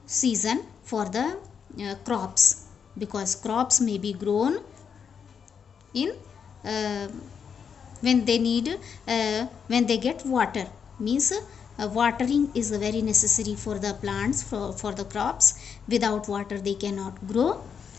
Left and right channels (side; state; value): right; quieter; 6.9 dB